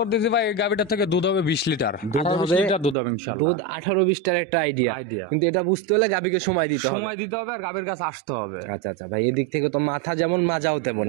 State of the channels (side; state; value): left; drops out; at 3.0 s